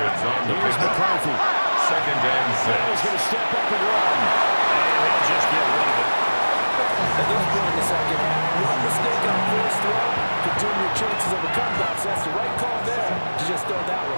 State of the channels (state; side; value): inverted; both; correlation -1.00